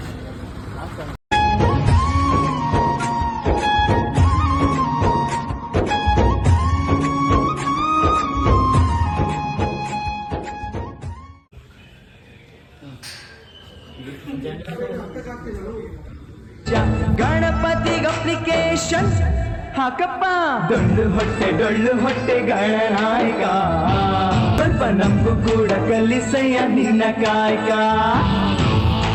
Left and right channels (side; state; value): both; identical; correlation 1.00